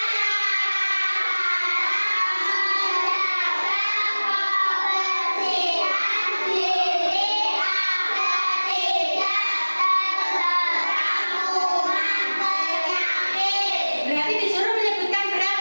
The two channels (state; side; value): inverted; both; correlation -1.00